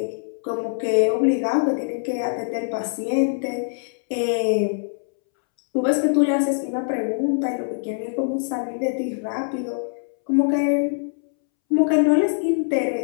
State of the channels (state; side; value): silent; right; 63 dB below the other